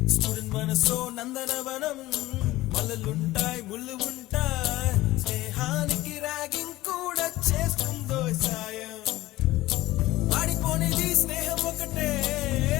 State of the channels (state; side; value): quieter; right; 17.3 dB